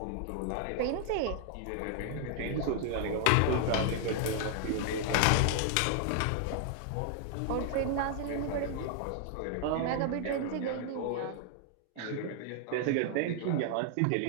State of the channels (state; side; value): different; both; correlation 0.00